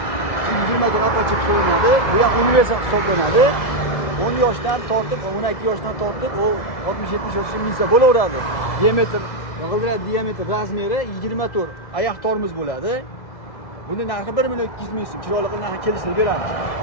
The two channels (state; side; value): late; right; 2.0 ms